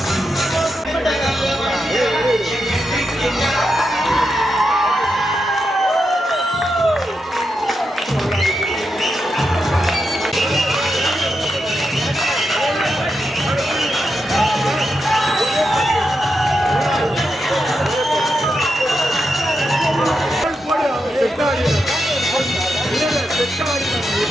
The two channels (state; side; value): normal; both; correlation 0.85